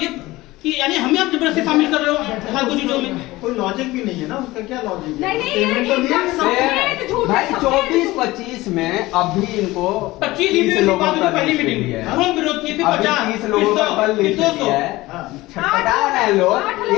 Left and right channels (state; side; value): quieter; right; 19.0 dB